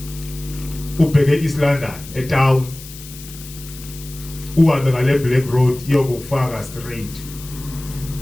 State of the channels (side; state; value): left; noise; hiss, 16 dB below the sound